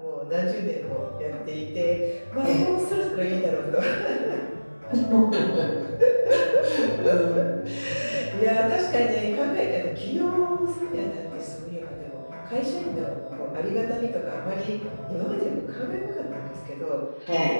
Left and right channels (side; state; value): both; inverted; correlation -1.00